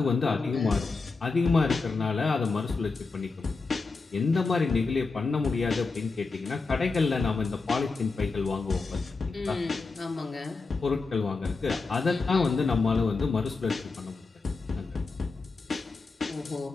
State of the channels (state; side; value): quieter; right; 4.1 dB